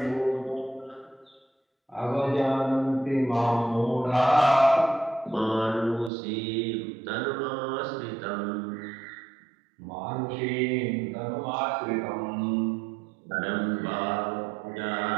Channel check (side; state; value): left; drops out; at 6.1 s